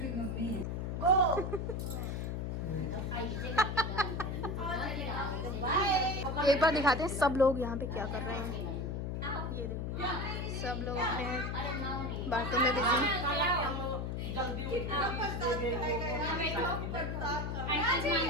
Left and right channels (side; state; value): left; noise; hum, 2 dB below the sound